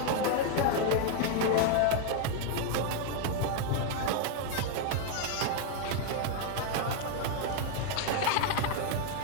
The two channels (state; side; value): different; both; correlation 0.00